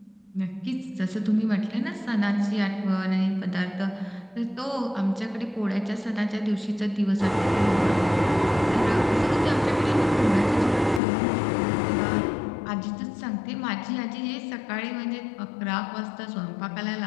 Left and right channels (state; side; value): drops out; right; at 11.0 s